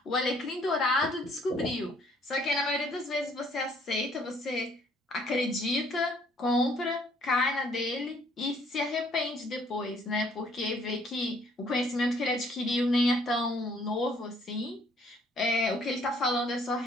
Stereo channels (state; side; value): normal; both; correlation 0.63